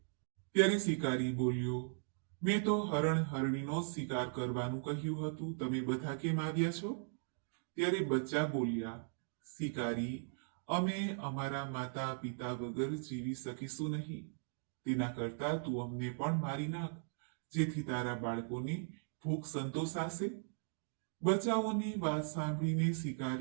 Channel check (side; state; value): left; silent; digital silence